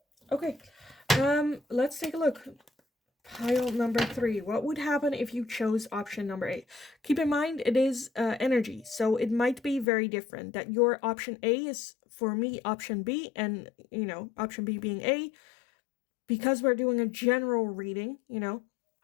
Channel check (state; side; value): drops out; right; at 9.9 s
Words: Okay, let's take a look. Pile number 3. What would happen if you chose option number A? Keep in mind, it is energy, so it might be very different. That your option A is, for me, option B, and, option B being A. Because we're doing a general reading,